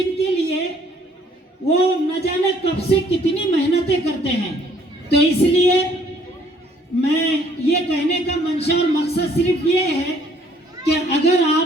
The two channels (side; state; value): both; normal; correlation 0.62